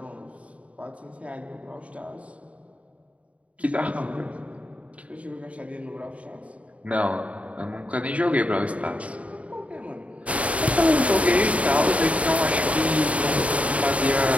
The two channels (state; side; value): late; left; 0.066 ms